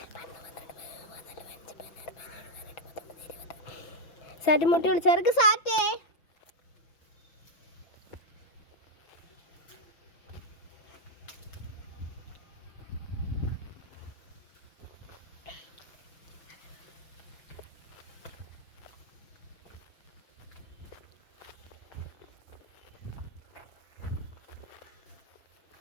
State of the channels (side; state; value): right; late; 5.9 ms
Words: സാറ്റ് മുട്ടി വിളിച്ചവർക്ക് സാറ്റേ.